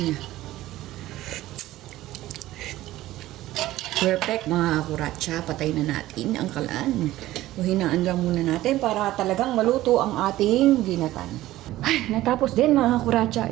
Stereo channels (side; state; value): left; quieter; 15.7 dB